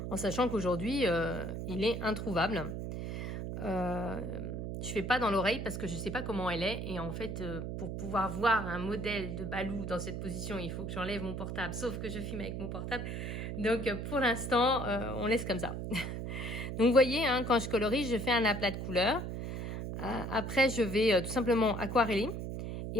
En sachant qu'aujourd'hui, il est introuvable. Je fais pas dans l'oreille parce que je sais pas comment elle est. Et en fait, pour pouvoir voir un modèle de Balou dans cette position, il faut que j'enlève mon portable. Sauf que je filme avec mon portable. Donc, pour l'instant, on laisse comme ça. Donc, vous voyez, hein, quand je colorie, je fais un aplat de couleurs. Après, je vais tout simplement aquareller.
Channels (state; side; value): noise; right; hum, 5 dB below the sound